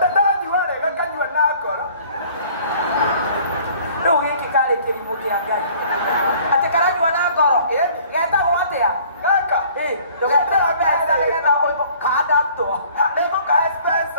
rĩu gĩkĩ karĩ kĩrimũ kĩa ngai atĩ karanyua na ngoro getagwo atĩa gaka ndũgeterwo mbeca nĩgetha kandamtwo nĩngũkahe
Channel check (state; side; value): inverted; both; correlation -0.54